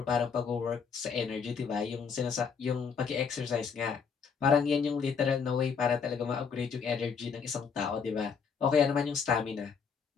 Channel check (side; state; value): right; quieter; 6.1 dB